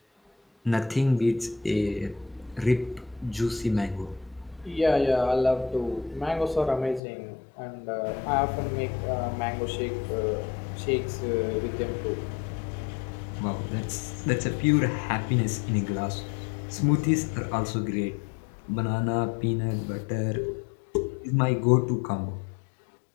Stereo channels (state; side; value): drops out; right; at 7.0 s